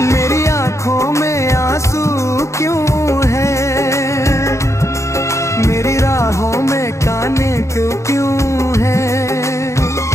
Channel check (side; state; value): right; late; 0.14 ms